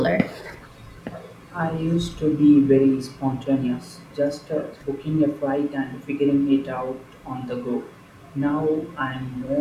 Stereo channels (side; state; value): both; identical; correlation 1.00